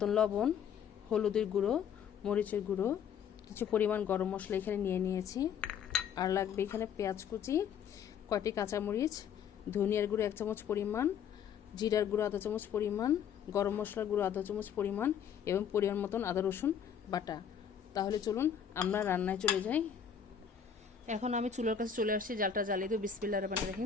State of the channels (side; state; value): right; quieter; 7.9 dB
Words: লবণ, হলুদের গুঁড়ো, মরিচের গুঁড়ো, কিছু পরিমাণ গরম মশলা এখানে নিয়ে নিয়েছি, আর লাগবে এখানে পেঁয়াজ কুচি, কয়টি কাঁচামরিচ, ধনিয়ার গুঁড়ো 1 চামচ পরিমাণ, জিরার গুঁড়ো আধা চামচ পরিমাণ, গরম মশলার গুঁড়ো আধা চামচ পরিমাণ এবং পরিমাণ মতন আদা রসুন বাটা। তাহলে চলুন আমরা রান্নায় চলে যাই। এখন আমি চুলার কাছে চলে আসছি, জালটা জ্বালিয়ে দেব। বিসমিল্লাহির রহমানির